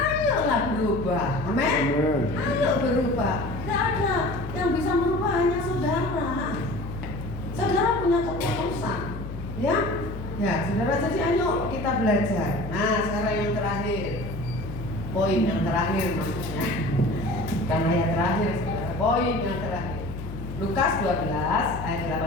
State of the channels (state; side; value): noise; left; hum, 9 dB below the sound